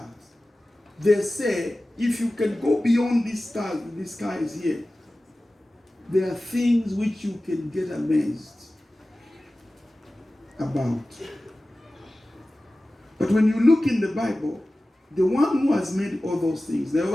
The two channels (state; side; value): normal; both; correlation 0.96